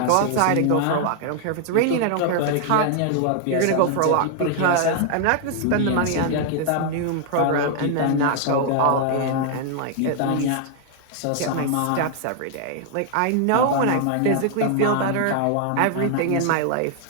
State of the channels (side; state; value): both; different; correlation 0.00